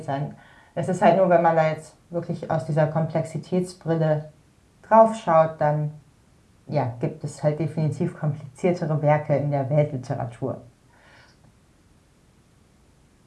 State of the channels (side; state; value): both; identical; correlation 1.00